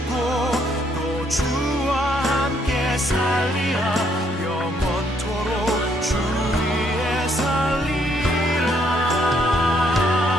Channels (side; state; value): both; normal; correlation 0.70